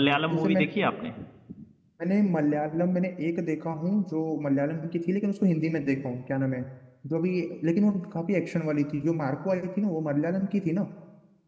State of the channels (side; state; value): both; identical; correlation 1.00